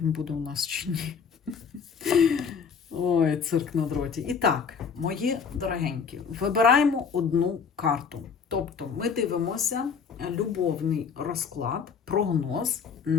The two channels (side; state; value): right; quieter; 6.2 dB